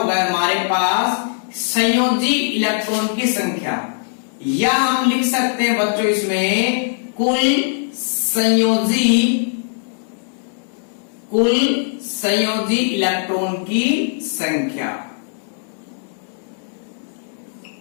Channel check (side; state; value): right; silent; digital silence